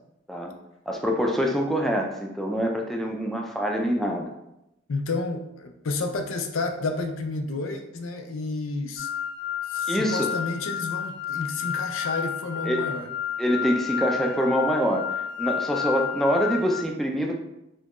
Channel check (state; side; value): normal; both; correlation 0.58